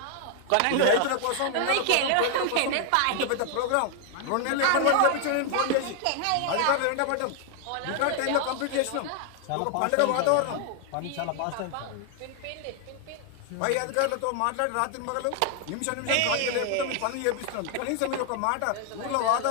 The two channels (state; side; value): different; both; correlation 0.00